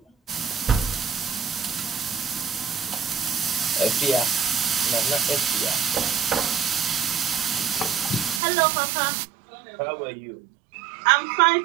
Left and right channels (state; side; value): drops out; left; at 8.4 s